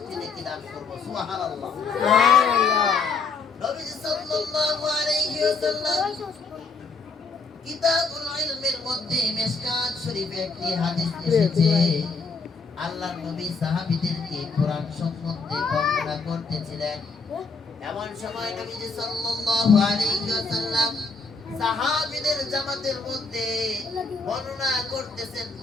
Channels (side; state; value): right; quieter; 4.4 dB